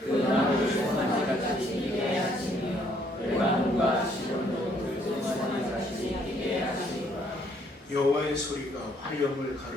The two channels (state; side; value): normal; both; correlation 0.67